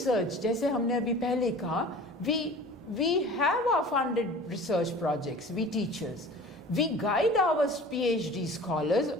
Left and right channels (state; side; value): normal; both; correlation 0.42